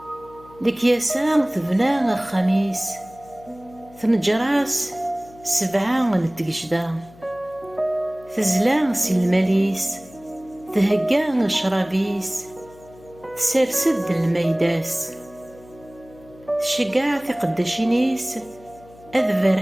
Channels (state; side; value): noise; left; hum, 23 dB below the sound